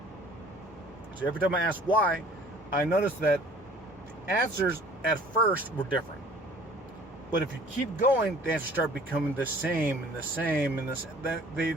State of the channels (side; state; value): both; normal; correlation 0.51